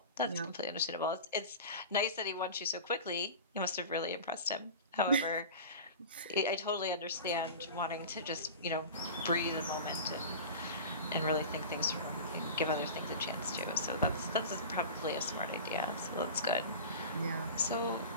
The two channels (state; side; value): inverted; both; correlation -0.33